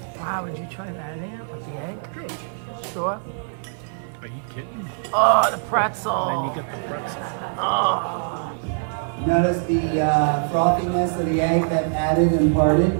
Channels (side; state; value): left; silent; 63 dB below the other